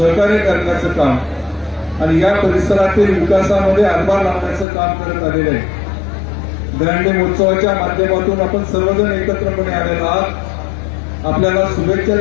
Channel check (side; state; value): right; drops out; at 4.7 s